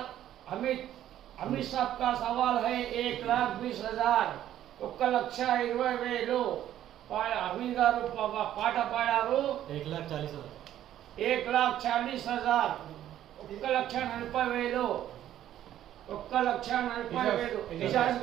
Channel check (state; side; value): quieter; left; 11.9 dB